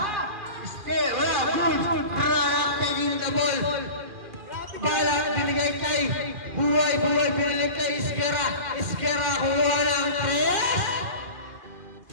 Still, wala, good. Granada taking the ball. Balat, binigay kay Buhay, binigay kay Iskera. Iskera, kuha ng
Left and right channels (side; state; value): left; late; 2.4 ms